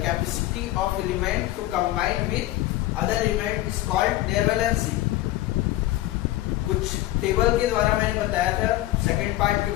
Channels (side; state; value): right; quieter; 16.0 dB